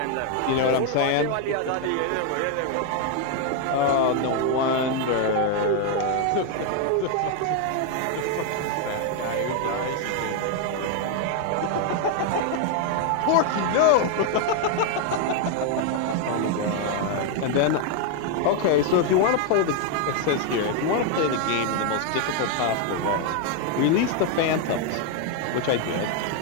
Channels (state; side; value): different; both; correlation 0.01